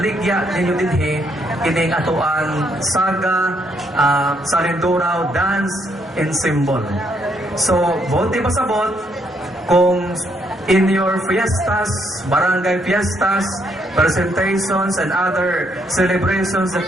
ninyo dinhi kining atoang Saga Salinduraw Dance Ensemble. So, bote pasabot kung in your fiestas, barangay fiestas, presentations and other celebrations that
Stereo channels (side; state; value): both; normal; correlation 0.73